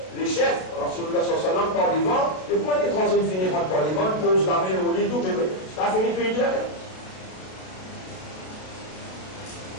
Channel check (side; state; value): right; late; 32 ms